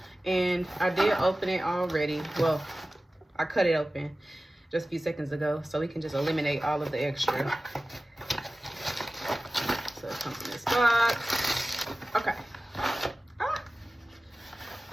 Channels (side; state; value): both; normal; correlation 0.96